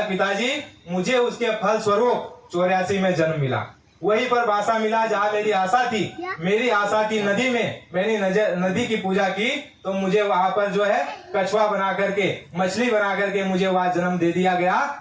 पिताजी मुझे उसके फल स्वरूप 84 में जन्म मिला। वहीं पर बासा मिला जहाँ मेरी आशा थी। मेरी आशा थी नदी में, मैंने नदी की पूजा की तो मुझे वहां पर जो है कछुआ बना करके, मछली बना करके मुझे वहां जन्म दे दिया गया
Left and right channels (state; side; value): identical; both; correlation 1.00